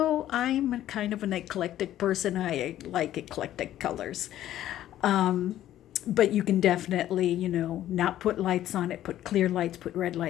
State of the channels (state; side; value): quieter; right; 12.7 dB